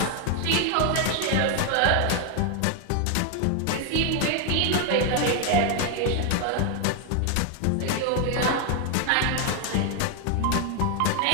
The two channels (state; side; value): different; both; correlation 0.01